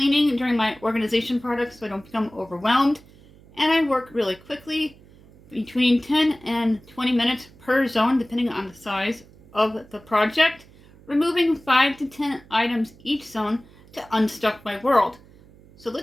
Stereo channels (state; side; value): noise; right; hum, 25 dB below the sound